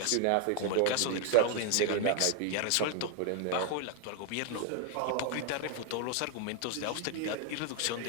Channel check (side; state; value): both; different; correlation 0.00